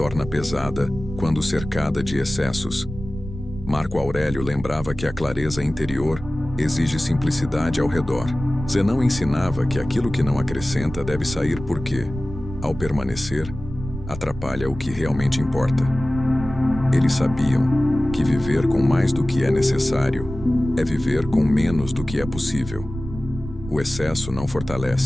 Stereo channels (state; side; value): noise; right; rumble, 11 dB below the sound